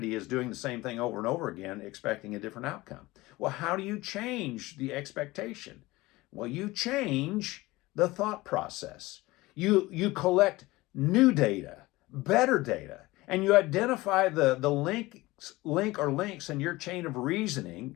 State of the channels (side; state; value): right; quieter; 20.0 dB